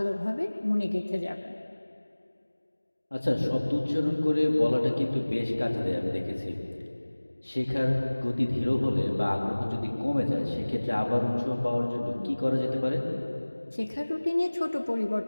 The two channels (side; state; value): both; inverted; correlation -1.00